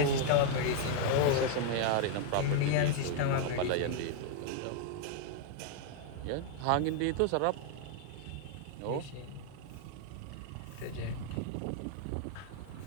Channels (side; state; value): both; different; correlation 0.00